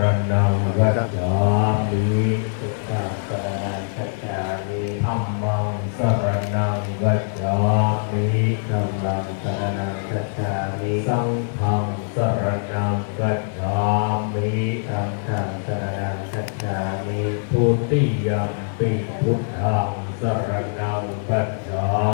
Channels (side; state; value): right; silent; 58 dB below the other